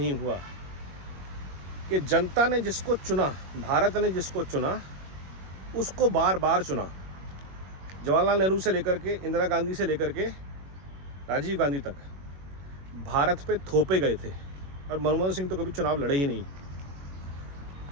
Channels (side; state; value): left; late; 21 ms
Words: हुआ कि जनता ने जिसको चुना, भारत ने जिसको चुना, उसको बार बार चुना। जवाहरलाल नेहरू से लेकर के, इंदिरा गांधी से लेकर के राजीव गांधी तक भारत पे थोपे गए थे और मनमोहन सिंह तो कभी चुनाव लड़े ही नहीं।